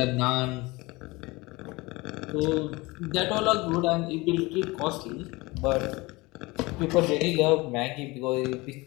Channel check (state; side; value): quieter; right; 23.1 dB